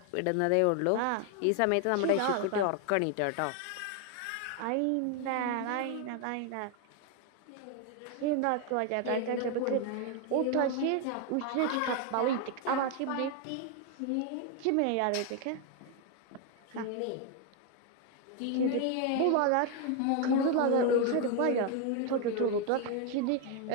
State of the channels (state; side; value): different; both; correlation 0.01